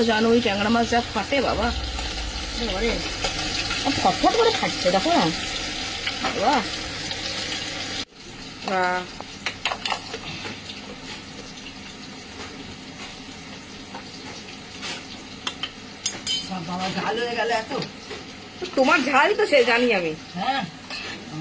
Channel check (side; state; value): both; identical; correlation 1.00